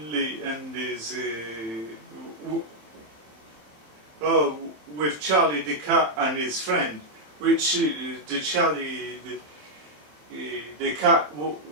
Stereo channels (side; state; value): left; late; 26 ms